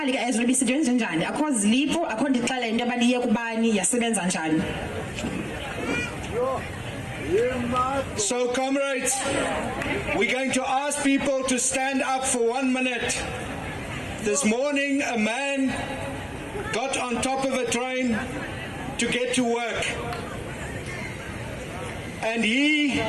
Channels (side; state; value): both; identical; correlation 1.00